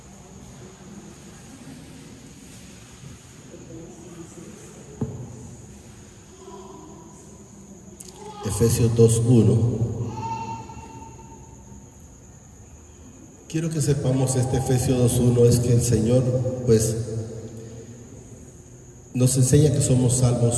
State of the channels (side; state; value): both; identical; correlation 1.00